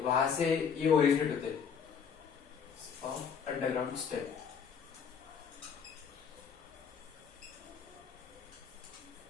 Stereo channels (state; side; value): quieter; right; 6.8 dB